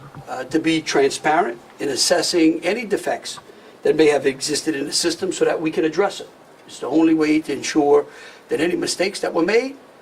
to be transparent in assessing any defects that may have existed in the system so that we can address it. It's the only way to ensure that any mistakes that were made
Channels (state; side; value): identical; both; correlation 1.00